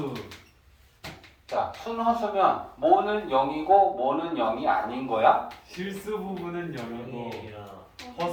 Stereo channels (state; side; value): identical; both; correlation 1.00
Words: 자, 순허수면 뭐는 0이고 뭐는 0이 아닌 거야? 실수 부분은 0이고